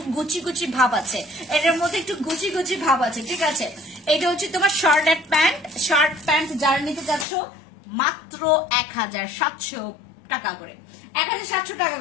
গুচি ভাব আছে, এটার মধ্যে একটু গুচি ভাব আছে, ঠিক আছে। এটা হচ্ছে তোমার শার্ট প্যান্ট যারা নিতে চাচ্ছ মাত্র 1700 টাকা করে, 1700 টাকা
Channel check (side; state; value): right; drops out; at 7.2 s